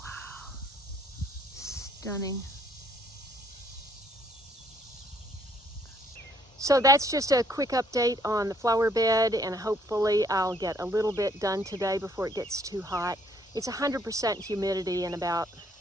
stunning. So that's just a quick update on the flower bed, and hopefully I'll get a little bit done today before it gets too hot. It's 100% humidity and about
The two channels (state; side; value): normal; both; correlation 0.66